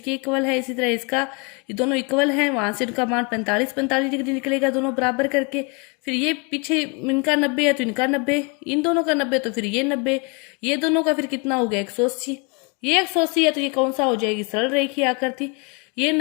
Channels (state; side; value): quieter; right; 31.8 dB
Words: इक्वल है, इसी तरह इसका, ये दोनों इक्वल हैं, वहां से इनका मान 45 डिग्री निकलेगा दोनों बराबर करके। फिर ये पीछे इनका 90 है तो इनका 90, इन दोनों का 90 तो फिर ये 90, ये दोनों का फिर कितना हो गया 180, ये 180 है तो ये कौन सा हो जाएगी, सरल रेखीय आकृति। ये